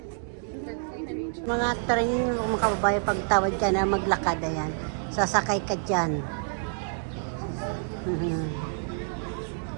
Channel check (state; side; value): silent; left; digital silence